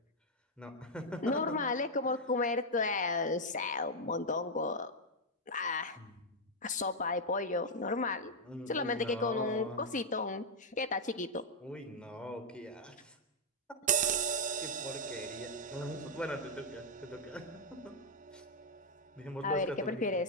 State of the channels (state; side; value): normal; both; correlation -0.01